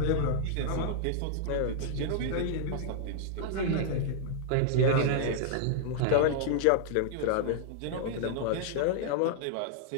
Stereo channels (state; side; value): different; both; correlation -0.01